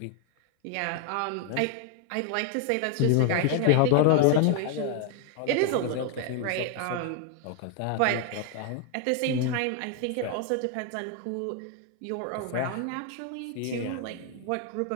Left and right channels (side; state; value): both; different; correlation 0.00